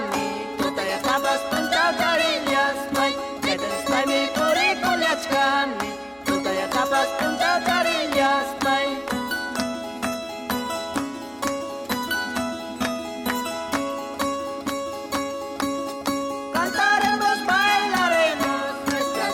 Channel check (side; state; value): both; identical; correlation 1.00